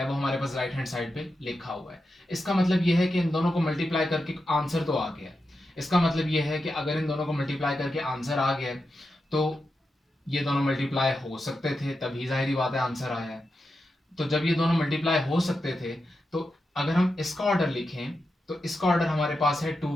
वो हमारे पास राइट हैंड साइड पे लिखा हुआ है। इसका मतलब ये है कि इन दोनों को मल्टीप्लाई करके आंसर तो आ गया। इसका मतलब ये है कि अगर इन दोनों को मल्टीप्लाई करके आंसर आ गया तो ये दोनों मल्टीप्लाई हो सकते थे, तभी जाहिर बात है आंसर आया है। तो जब ये दोनों मल्टीप्लाई हो सकते थे तो अगर हम इसका ऑर्डर लिखें तो इसका ऑर्डर हमारे पास है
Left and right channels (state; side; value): normal; both; correlation 0.89